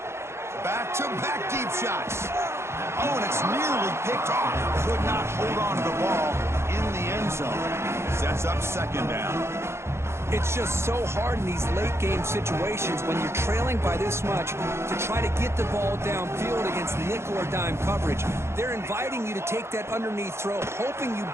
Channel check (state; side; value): late; left; 0.13 ms